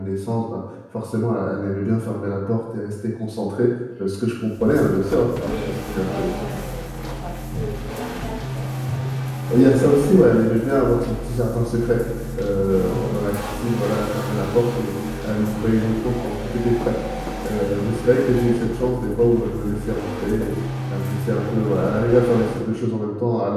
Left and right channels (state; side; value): identical; both; correlation 1.00